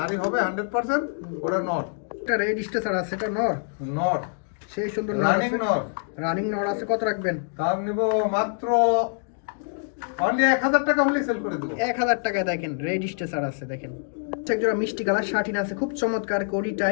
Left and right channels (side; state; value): right; silent; digital silence